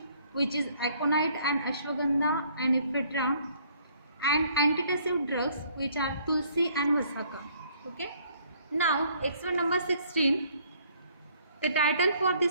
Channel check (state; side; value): inverted; both; correlation -0.62